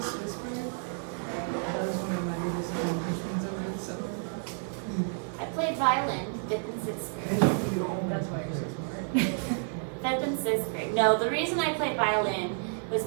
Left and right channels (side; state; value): left; silent; 58 dB below the other